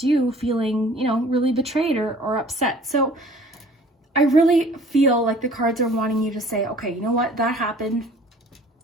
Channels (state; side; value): normal; both; correlation 0.51